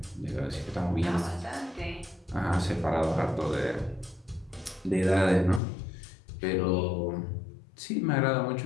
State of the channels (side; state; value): right; drops out; at 5.6 s